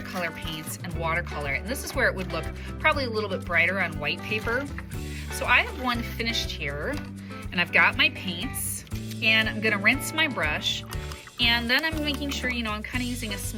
paints and watercolor, and this is where it would look probably a little bit brighter on white paper. So I have one finished here, and I've got my paints, and I'm gonna rinse my brush. And then I'm making sure, I'm kind of using a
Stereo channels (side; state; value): both; identical; correlation 1.00